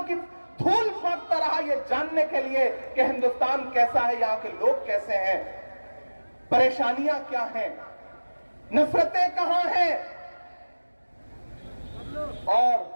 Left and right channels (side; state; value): both; inverted; correlation -1.00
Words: की धूल फेंकता रहा, ये जानने के लिए कि हिंदुस्तान कैसा है, यहां के लोग कैसे हैं, परेशानियां क्या हैं, नफरतें कहां हैं। और